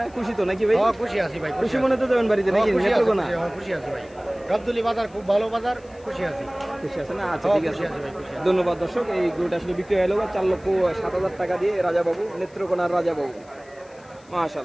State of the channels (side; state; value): left; noise; hiss, 29 dB below the sound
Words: খুশি তো নাকি ভাই? খুশি আছি ভাই। খুশি মনে তো যাবেন বাড়িতে নাকি? নেত্রকোনা খুশি আছি ভাই। গাবতলী বাজার খুব ভালো বাজার, খুশি আছি। খুশি আছে না? আচ্ছা, ঠিক আছে, ধন্যবাদ। দর্শক, এই গরুটা আসলে বিক্রি হয়ে গেল 4,07,000 টাকা দিয়ে রাজা বাবু, নেত্রকোনার রাজা বাবু।